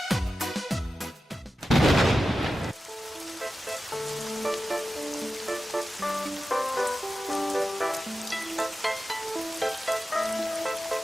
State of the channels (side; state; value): both; normal; correlation 0.93